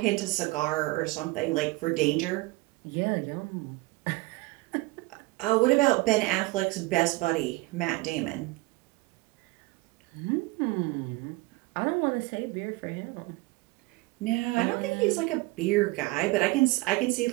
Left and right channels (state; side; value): quieter; left; 21.9 dB